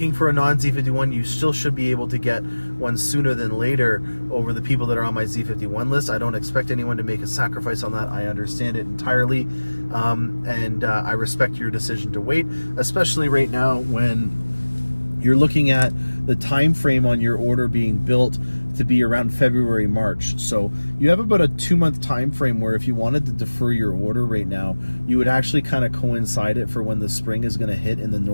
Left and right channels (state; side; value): inverted; both; correlation -1.00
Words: for a non-Z51, you still should be able to get one sooner than later over the people that are on my Z51 list. I don't expect anyone to make a sacrifice on that. I understand it entirely, and I respect your decision to wait, especially right now when you're looking at the time frame on your order being built to be around February, March. So you have about a 2-month time frame where if you wanted to defer your order right now, you would actually kind of coincide it for when the spring is going to hit in the